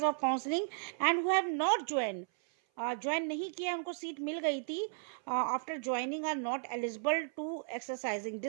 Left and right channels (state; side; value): silent; left; 55 dB below the other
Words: of counselling and who have not join नहीं किया, उनको सीट मिल गई थी, after joining are not eligible to exercising,